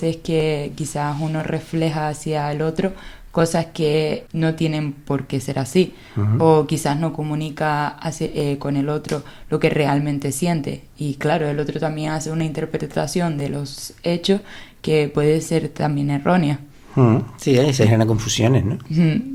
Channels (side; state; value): both; identical; correlation 1.00